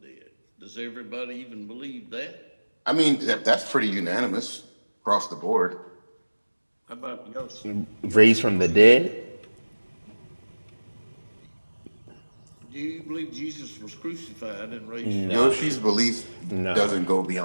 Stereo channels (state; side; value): inverted; both; correlation -1.00